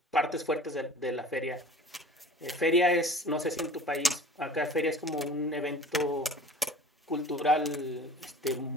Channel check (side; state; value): both; normal; correlation 0.43